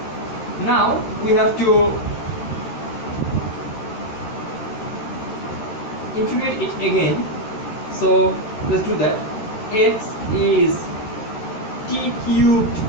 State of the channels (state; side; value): late; right; 13 ms